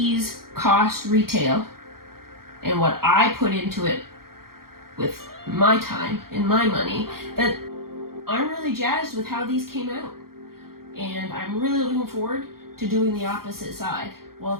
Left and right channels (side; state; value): left; late; 0.93 ms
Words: cost retail and what I put into it with my time and my money, that I'm really jazzed with how these came out. And I'm really looking forward to doing the opposite side while